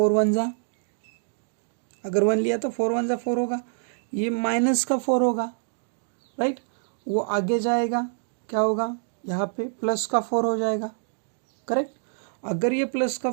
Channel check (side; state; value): left; silent; 61 dB below the other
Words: 1 जा, अगर 1 लिया तो 4 1 जा 4 होगा, ये माइनस का 4 होगा, राइट। वो आगे जाएगा, क्या होगा, यहाँ पे प्लस का 4 हो जाएगा, करेक्ट। अगर ये प्लस का